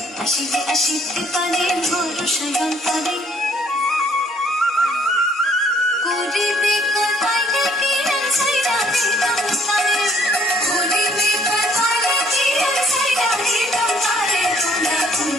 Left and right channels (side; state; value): both; normal; correlation 0.63